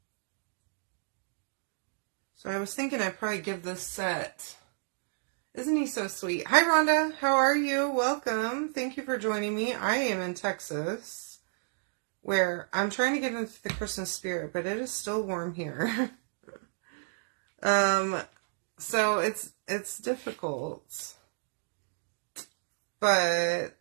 So I was thinking I'd probably give this set. Isn't he so sweet? Hi, Rhonda. How are you? Welcome. Thank you for joining me. I am in Texas, where I'm trying to get into the Christmas spirit, but it is still warm here. So it's difficult, but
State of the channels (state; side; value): silent; left; digital silence